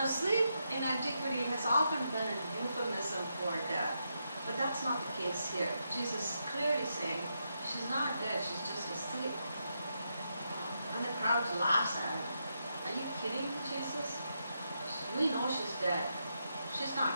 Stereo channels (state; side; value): inverted; both; correlation -0.83